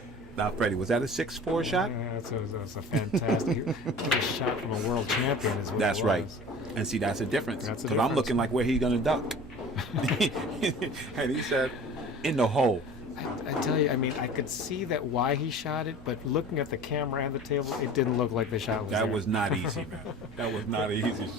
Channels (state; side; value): normal; both; correlation 0.41